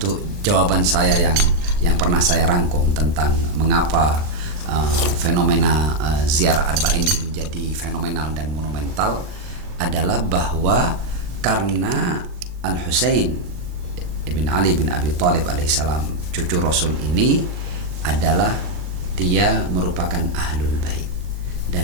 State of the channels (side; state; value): left; late; 39 ms